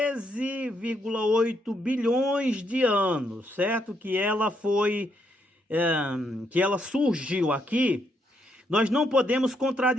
bilhões de anos, certo? Que ela surgiu aqui, nós não podemos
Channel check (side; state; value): both; normal; correlation 0.76